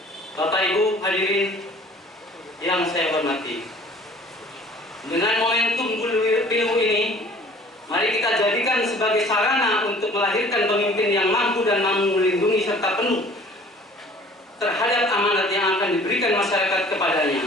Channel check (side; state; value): both; normal; correlation 0.51